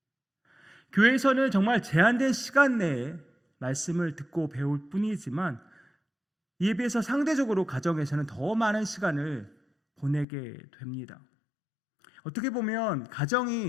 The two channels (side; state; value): right; drops out; at 10.2 s